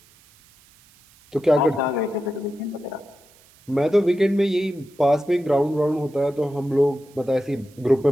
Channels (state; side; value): noise; right; hiss, 29 dB below the sound